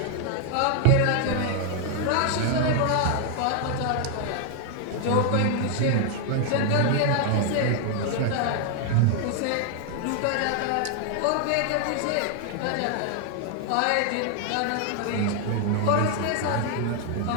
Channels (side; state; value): both; different; correlation 0.00